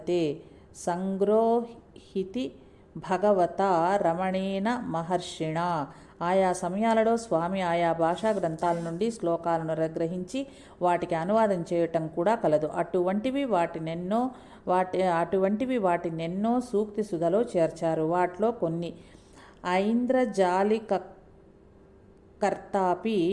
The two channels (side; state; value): both; identical; correlation 1.00